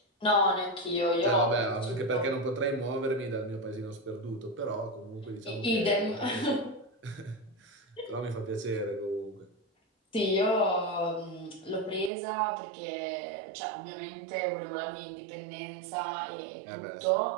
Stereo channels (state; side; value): drops out; left; at 12.1 s